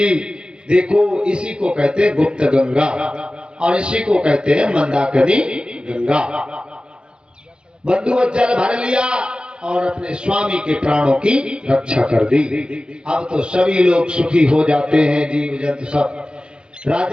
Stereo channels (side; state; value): left; late; 0.052 ms